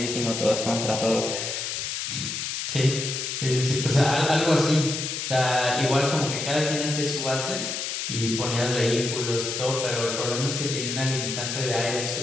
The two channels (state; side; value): noise; left; hiss, 3 dB below the sound